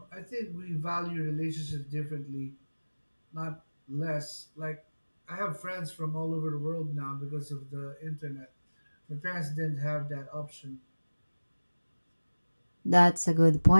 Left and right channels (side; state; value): both; inverted; correlation -1.00